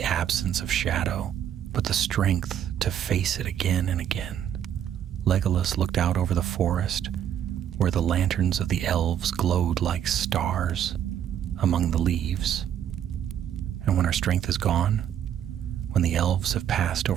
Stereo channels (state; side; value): quieter; left; 9.9 dB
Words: absence of shadow, but the strength to face it again and again." Legolas looked out over the forest, where the lanterns of the elves glowed like stars among the leaves. "And when our strength is gone, when the elves have passed